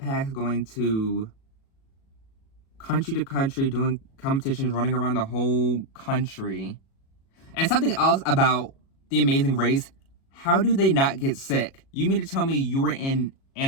going to country, doing competitions, running around the whole country. And something else about The Amazing Race, how do they not get sick? You mean to tell me you were in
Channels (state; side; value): late; right; 37 ms